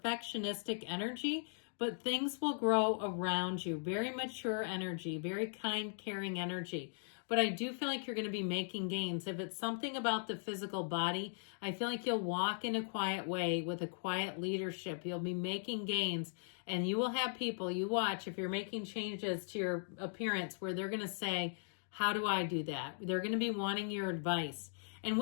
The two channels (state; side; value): silent; right; digital silence